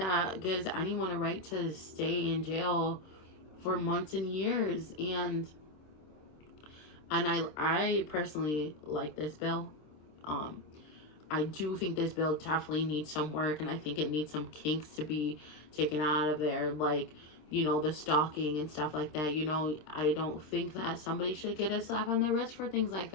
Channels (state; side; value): late; right; 26 ms